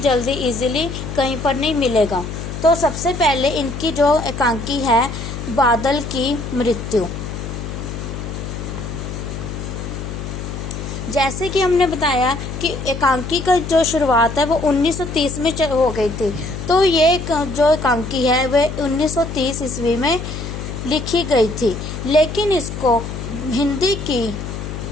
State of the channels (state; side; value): noise; left; hum, 7 dB below the sound